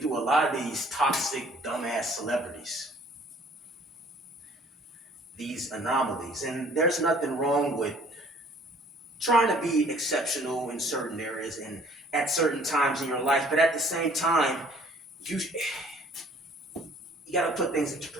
a lot of these toxic, dumbass celebrities. These anomalies. And there's nothing wrong with trying to be exceptional in certain areas and at certain times in your life. But at the same time, you got to put things into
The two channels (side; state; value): both; normal; correlation 0.56